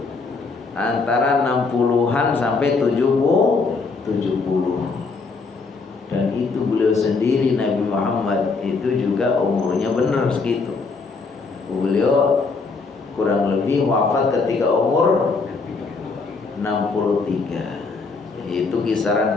Antara 60-an sampai 70. Dan itu beliau sendiri, Nabi Muhammad itu juga umurnya benar segitu. Beliau kurang lebih wafat ketika umur 63, yaitu kisaran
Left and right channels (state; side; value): quieter; right; 4.3 dB